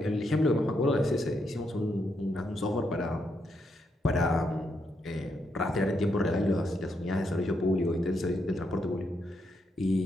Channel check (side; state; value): both; normal; correlation 0.79